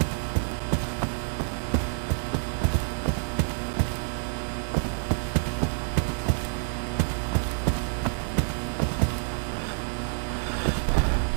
ভয় করে না। এই গেমে অন্ধকার তো কেন গো? এই গেমের চিবাই চাবাই ভূত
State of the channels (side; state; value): left; silent; digital silence